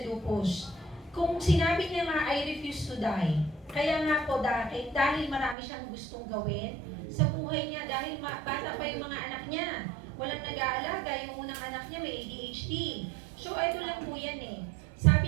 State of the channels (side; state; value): left; drops out; at 5.6 s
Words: lupus. Kung sinabi niya nga, I refuse to die. Kaya nga po dahil marami siyang gustong gawin sa buhay niya, dahil bata pa yung mga anak niya. Walang nag-aalaga, yung unang anak niya may ADHD. So ito lang po yan eh.